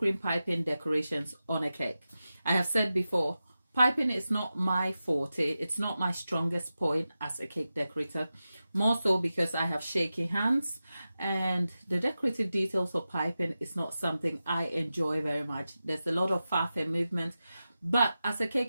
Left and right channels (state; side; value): inverted; both; correlation -0.93